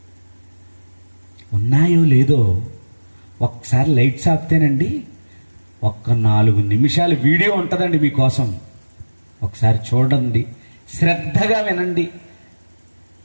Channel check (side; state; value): both; inverted; correlation -1.00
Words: ఉన్నాయో లేదో ఒక్కసారి లైట్స్ ఆపితేనండి, ఒక్క 4 నిమిషాలు వీడియో ఉంటుందండి మీకోసం. ఒకసారి చూడండి, శ్రద్ధగా వినండి.